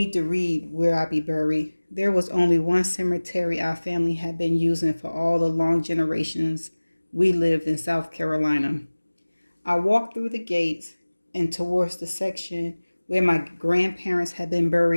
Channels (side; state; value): both; inverted; correlation -1.00